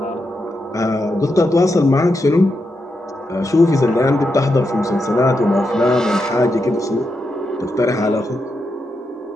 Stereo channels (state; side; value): normal; both; correlation 0.85